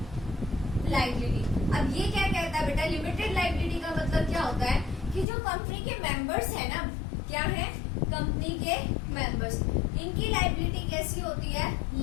लायबिलिटी, अब ये क्या कहता है बेटा, लिमिटेड लायबिलिटी का मतलब क्या होता है कि जो कंपनी के मेंबर्स है ना, क्या है, कंपनी के मेंबर्स, इनकी लायबिलिटी कैसी होती है,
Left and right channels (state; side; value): drops out; right; at 5.2 s